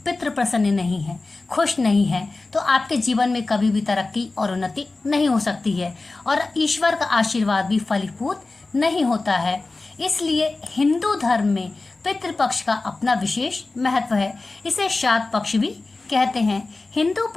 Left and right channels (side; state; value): right; quieter; 3.4 dB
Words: पितृ प्रसन्न नहीं है, खुश नहीं है, तो आपके जीवन में कभी भी तरक्की और उन्नति नहीं हो सकती है और ईश्वर का आशीर्वाद भी फलीभूत नहीं होता है। इसलिए हिंदू धर्म में पितृपक्ष का अपना विशेष महत्व है। इसे श्राद्ध पक्ष भी कहते हैं। हिंदू